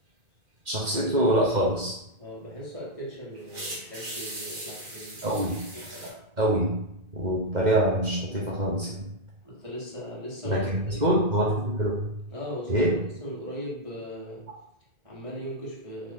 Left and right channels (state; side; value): late; left; 2.1 ms